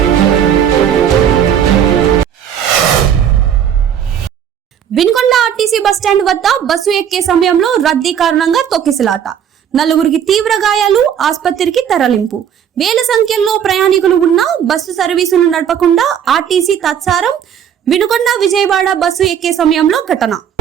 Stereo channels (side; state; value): left; quieter; 8.8 dB